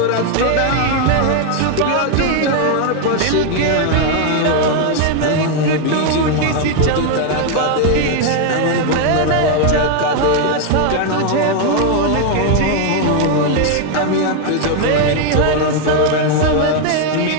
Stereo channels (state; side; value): different; both; correlation 0.00